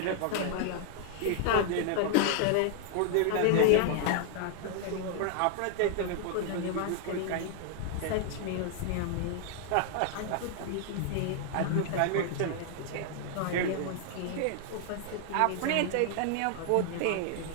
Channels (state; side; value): different; both; correlation 0.00